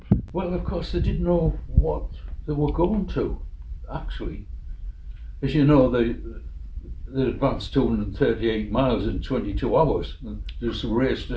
Well, of course, they didn't know what they were going to, actually. As you know, they advanced 238 miles in 22 hours and just raced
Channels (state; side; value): identical; both; correlation 1.00